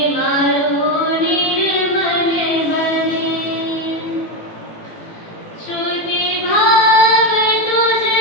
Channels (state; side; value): late; right; 18 ms